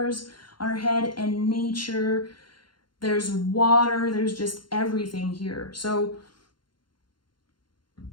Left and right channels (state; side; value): late; right; 0.72 ms